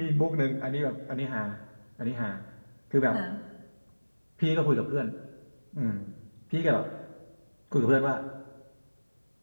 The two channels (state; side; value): inverted; both; correlation -1.00